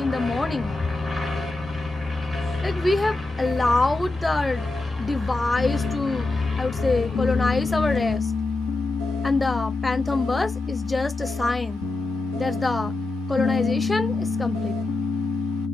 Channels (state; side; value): quieter; right; 3.1 dB